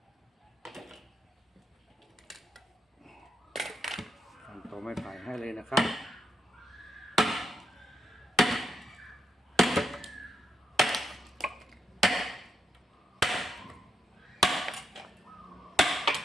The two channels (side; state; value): both; normal; correlation 0.79